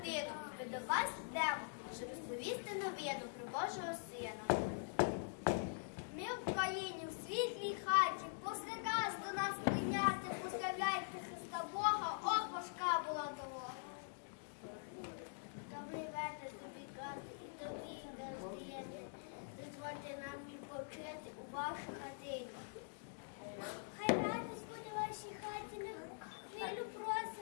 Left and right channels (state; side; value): silent; right; digital silence